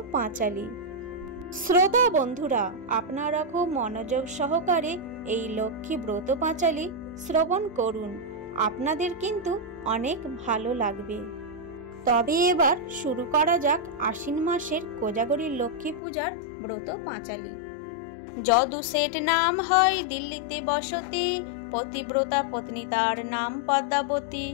পাঁচালী। শ্রোতা বন্ধুরা, আপনারা খুব মনোযোগ সহকারে এই লক্ষ্মী ব্রত পাঁচালী শ্রবণ করুন, আপনাদের কিন্তু অনেক ভালো লাগবে। তবে এবার শুরু করা যাক আশ্বিন মাসের কোজাগরী লক্ষ্মী পূজার ব্রত পাঁচালী। যদু শেঠ নাম হয় দিল্লিতে বসতি, পতিব্রতা পত্নী তার নাম পদ্মাবতী।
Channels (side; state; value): right; drops out; at 16.0 s